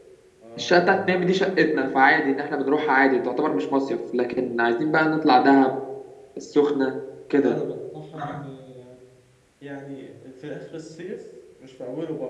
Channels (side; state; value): both; identical; correlation 1.00